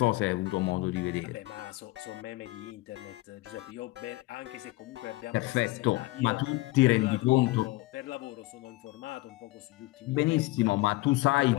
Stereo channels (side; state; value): right; quieter; 20.4 dB